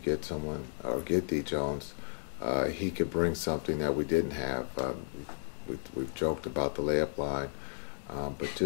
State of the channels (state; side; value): silent; right; digital silence